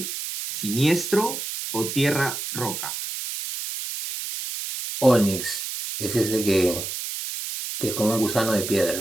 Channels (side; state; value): right; noise; hiss, 6 dB below the sound